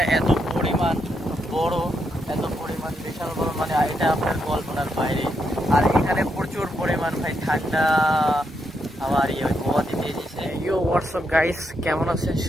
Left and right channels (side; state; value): both; normal; correlation 0.80